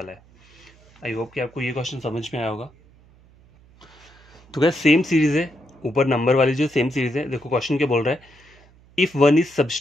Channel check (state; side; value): noise; right; hum, 28 dB below the sound